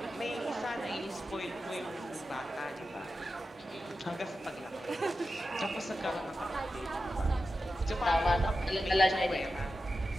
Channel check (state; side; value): normal; both; correlation 0.91